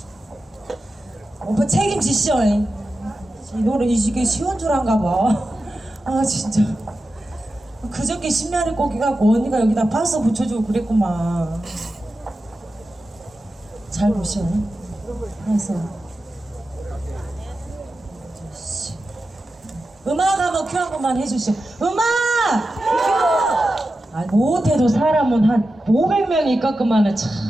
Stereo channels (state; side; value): normal; both; correlation 0.92